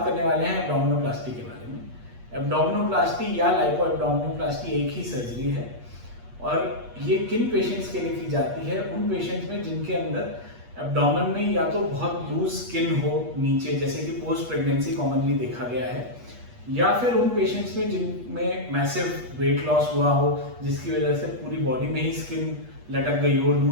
करने वाले हैं एब्डोमिनोप्लास्टी के बारे में। एब्डोमिनोप्लास्टी या लाइपो एब्डोमिनोप्लास्टी एक ही सर्जरी है और ये किन पेशेंट्स के लिए की जाती है? उन पेशेंट्स में जिनके अंदर एब्डोमेन में या तो बहुत लूज स्किन हो नीचे, जैसे कि पोस्ट प्रेगनेंसी कॉमनली देखा गया है, या फिर उन पेशेंट्स में जिनमें मैसिव वेट लॉस हुआ हो जिसकी वजह से पूरी बॉडी में ही स्किन लटक गई हो,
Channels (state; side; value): late; left; 8.3 ms